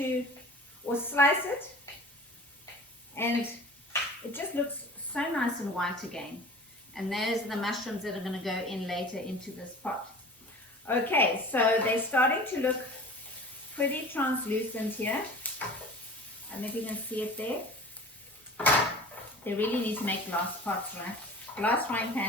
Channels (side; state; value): both; normal; correlation 0.41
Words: or slice it, and it just looks so nice and white again. And those are the mushrooms that are going to go in later into this pot. Okay, so they're starting to look pretty translucent here. I don't know if you can see it there. They really need to make glass pots, right? Glass frying